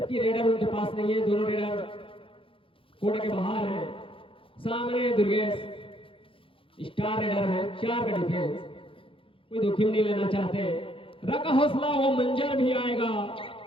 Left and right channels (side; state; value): right; late; 0.26 ms